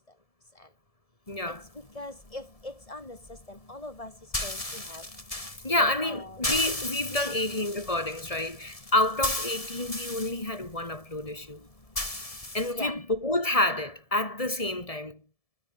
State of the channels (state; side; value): late; right; 1.7 ms